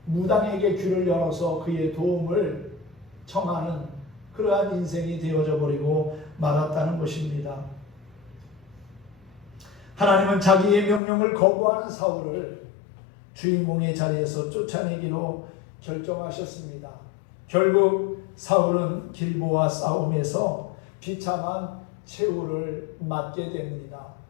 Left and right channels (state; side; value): drops out; right; at 11.0 s